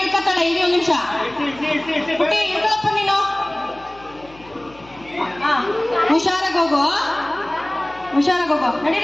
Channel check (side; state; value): left; noise; hum, 24 dB below the sound